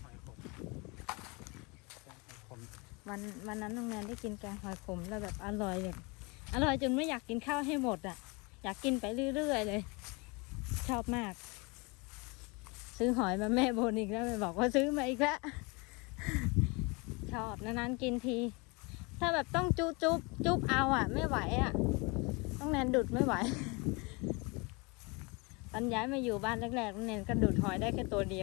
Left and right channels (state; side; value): quieter; right; 28.4 dB